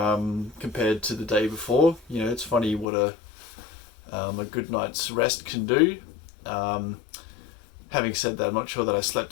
compared to the day before. It's funny what a good night's rest can do. Having said that, I'm not sure that I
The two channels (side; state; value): right; drops out; at 2.9 s